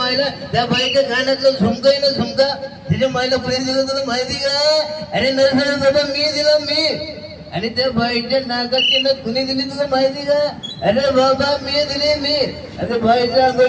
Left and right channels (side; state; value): both; identical; correlation 1.00